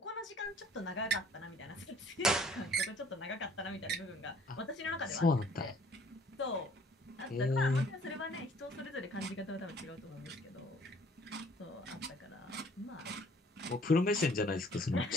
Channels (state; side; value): normal; both; correlation 0.56